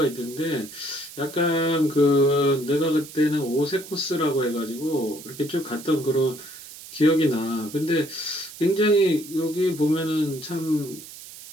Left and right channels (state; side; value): noise; right; hiss, 15 dB below the sound